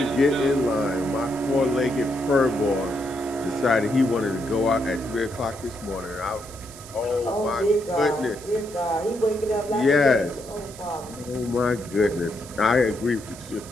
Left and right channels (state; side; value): noise; right; hiss, 17 dB below the sound